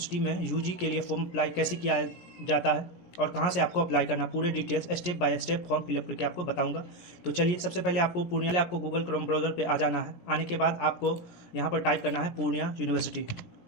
में यूजी के लिए फॉर्म अप्लाई कैसे किया जाता है और कहाँ से आपको अप्लाई करना, पूरे details step by step form fill up करके आपको बताऊंगा। तो चलिए, सबसे पहले आपको गूगल क्रोम ब्राउज़र पे आ जाना है। आने के बाद आपको यहाँ पर टाइप करना है पूर्णिया यूनिवर्सिटी।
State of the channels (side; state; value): right; late; 17 ms